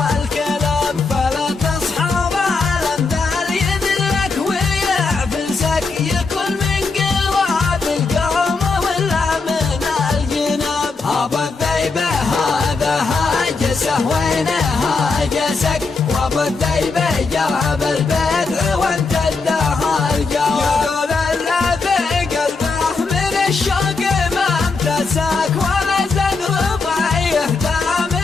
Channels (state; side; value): quieter; right; 4.2 dB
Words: الكلام. فلا تصحب الأمثال يذلك ويعفسك يكون من قراب القوم ولا من الجناب. أبو الذيبة هذا هاجسه وين هاجسك وأبو الذيبة جاب البدع وانت اداها الجواب. يقول الذي قلبه من الشوق ما امتسك ولا زاد رضي يهدى